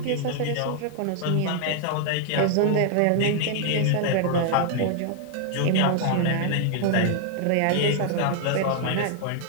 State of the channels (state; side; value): different; both; correlation 0.00